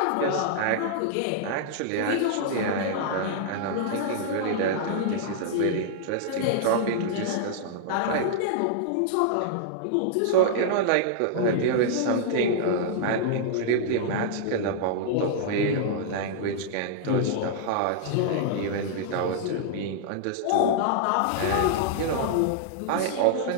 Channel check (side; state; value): both; different; correlation -0.01